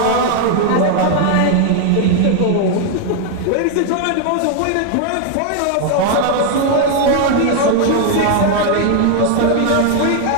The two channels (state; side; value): different; both; correlation 0.00